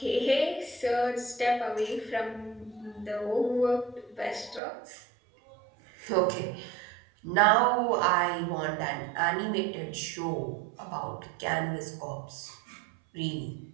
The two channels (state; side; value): drops out; left; at 4.6 s